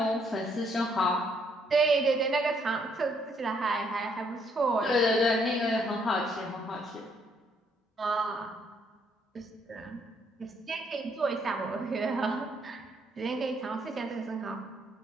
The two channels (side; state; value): both; normal; correlation 0.69